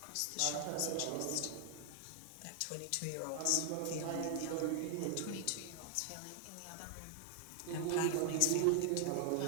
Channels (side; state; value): both; different; correlation 0.00